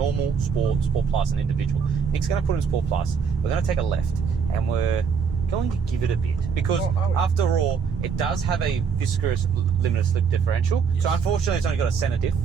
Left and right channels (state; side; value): quieter; left; 6.2 dB